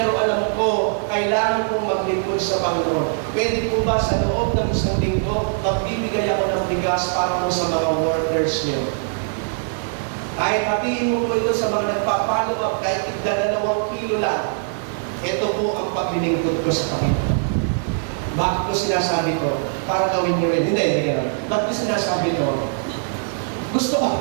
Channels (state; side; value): silent; left; digital silence